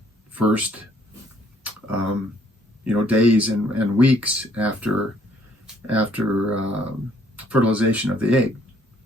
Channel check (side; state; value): both; normal; correlation 0.64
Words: first days and weeks after fertilization of the egg.